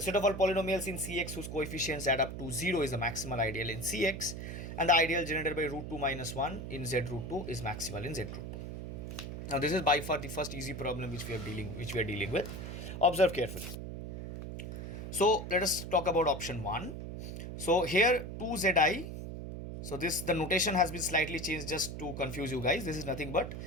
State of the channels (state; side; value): noise; right; hum, 7 dB below the sound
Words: set of all polynomials in Cx whose coefficients add up to 0 is a maximal ideal in Cx. And the ideal generated by root 2 minus 1 in Z root 2 is maximal in Z root 2. Now this is by far the first easy problem which we are dealing with. Observe carefully. So let us talk about option 1. So here 2Zi. So the notation has been slightly changed just to confuse you guys. This is nothing but